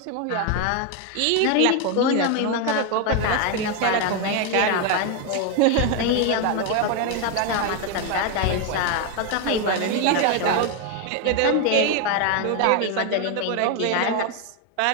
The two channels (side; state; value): both; different; correlation 0.01